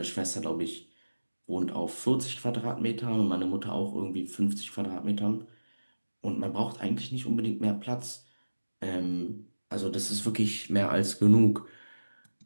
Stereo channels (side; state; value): both; inverted; correlation -1.00